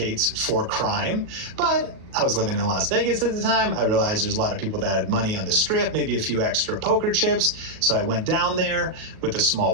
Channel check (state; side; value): late; left; 37 ms